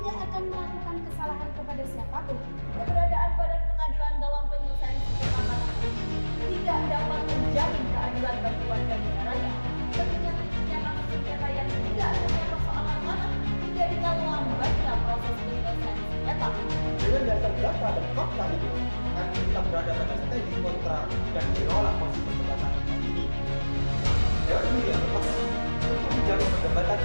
akan melakukan kesalahan kepada siapapun. Keberadaan badan pengadilan dalam penyelesaian sengketa tanah tidak dapat menjamin keadilan bagi warga negaranya. Mengingat tingginya kasus sengketa yang tidak hanya persoalan tanah menjadikan lambatnya proses penyelesaian sengketa. Dengan dasar data dan fakta itu, kami kita berada pada strategi kontra dan menolak posisi perdebatan ini. Dewan Juri yang tepat untuk menjamin perdebatan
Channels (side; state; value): both; inverted; correlation -1.00